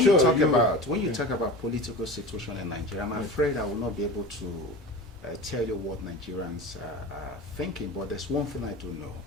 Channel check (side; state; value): both; normal; correlation 0.33